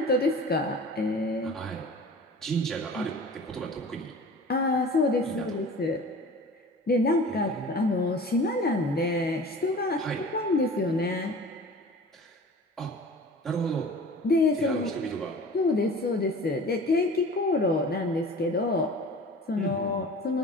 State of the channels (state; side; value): normal; both; correlation 0.41